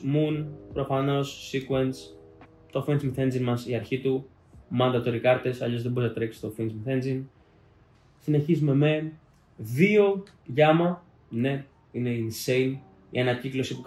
Moon, προφανώς Sequence, το Fence Myth Engine μας, η αρχή του, mandatory κάρτες, αλλιώς δεν μπορεί να τρέξει το Fence Myth Engine. Συνεχίζουμε με 2 Gamma, ναι, είναι insane. Η ανακύκλωση που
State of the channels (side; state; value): both; identical; correlation 1.00